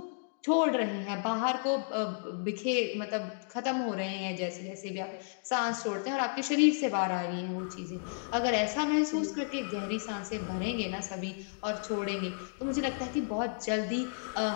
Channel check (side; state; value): right; silent; digital silence